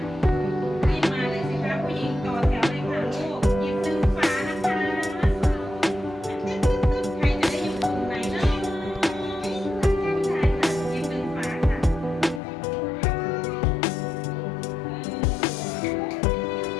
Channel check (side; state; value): right; drops out; at 12.4 s